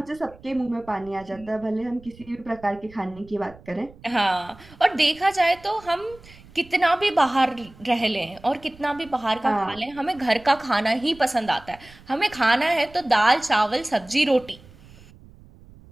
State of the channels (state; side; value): noise; right; rumble, 23 dB below the sound